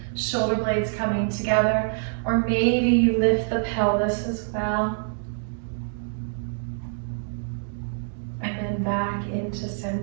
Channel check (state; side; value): silent; left; digital silence